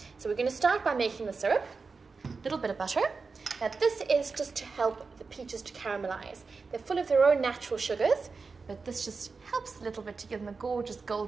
So we're going to start by making the syrup. A little bit of butter. Now this is just to help the peaches to caramelize. They're full of their own natural sugars, but this just helps a little bit to give them a gorgeous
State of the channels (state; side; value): quieter; left; 4.6 dB